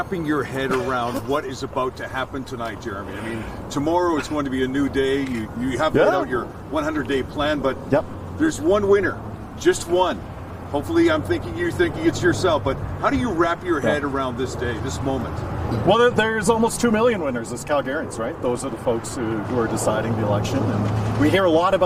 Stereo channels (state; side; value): identical; both; correlation 1.00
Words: your head around what is about to happen tonight, Jeromy? I mean, tomorrow is going to be a new day. You have laid out your 100-day plan, but there's one winner, just one. Hopefully, you're thinking it's yourself, but how do you wrap your head around this day, this moment? Well, there's almost 2 million winners as Calgarians, right? Those are the folks who are deciding the election. And we hear a lot